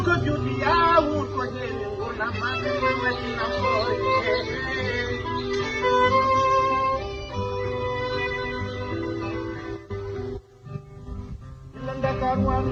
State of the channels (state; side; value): identical; both; correlation 1.00